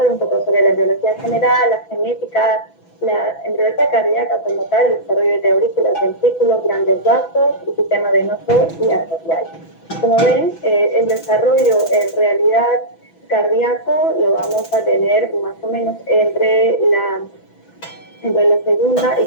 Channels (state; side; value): late; right; 6.0 ms